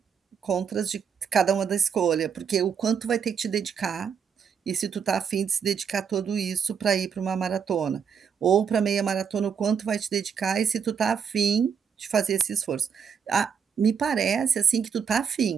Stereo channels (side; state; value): left; quieter; 6.9 dB